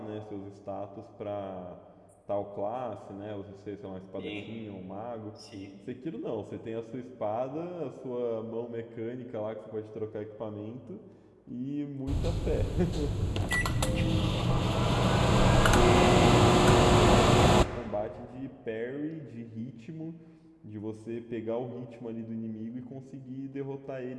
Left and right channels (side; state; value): both; identical; correlation 1.00